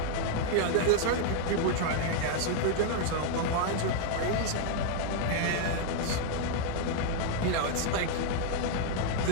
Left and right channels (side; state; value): both; different; correlation 0.00